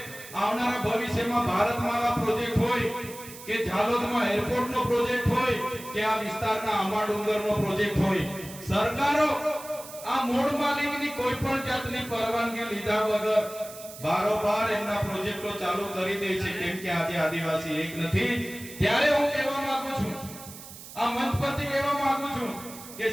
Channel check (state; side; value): noise; right; hiss, 15 dB below the sound